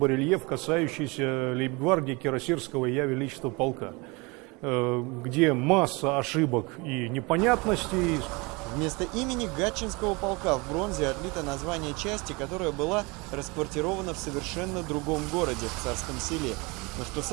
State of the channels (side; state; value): left; quieter; 26.7 dB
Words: касающийся лейб-гвардии Кирасирского Я Величества полка, где масса ошибок и непонятностей. Вместо имени Гатчинского полка в бронзе отлито название части, которая была расквартирована в совершенно другом городе, в Царском Селе. Но что